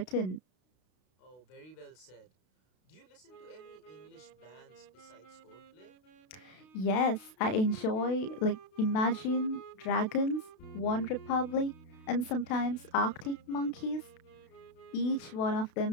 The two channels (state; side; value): late; right; 32 ms